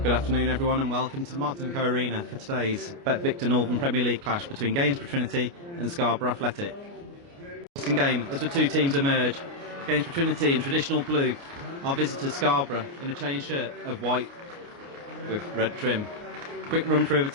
afternoon everyone and welcome to the Martin & Co Arena for today's Bet Victor Northern Premier League clash between Gainsborough Trinity and Scarborough Athletic. Interesting game as the two teams emerge. Gainsborough Trinity in traditional blue, our visitors Scarborough in a chain shirt of white with red trim. Quick run through of the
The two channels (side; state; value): left; late; 29 ms